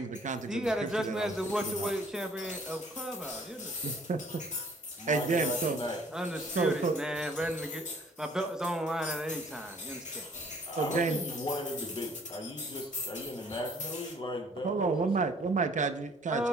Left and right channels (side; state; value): both; normal; correlation 0.57